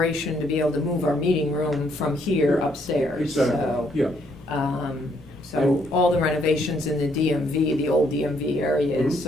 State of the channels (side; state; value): both; normal; correlation 0.70